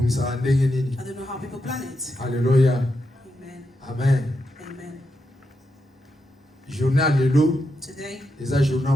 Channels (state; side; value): normal; both; correlation 0.85